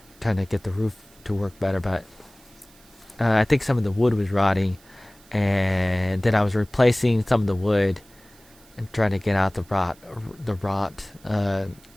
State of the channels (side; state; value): right; noise; hiss, 27 dB below the sound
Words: trying to get the roof to work better. But I think some of the wood was rotting, and then I was replacing some of the wood and trying to get out the rot.